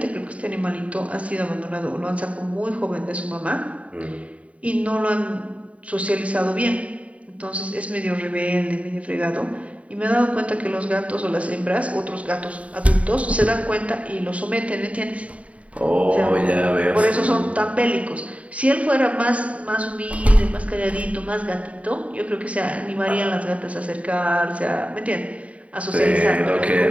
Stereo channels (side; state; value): left; late; 0.066 ms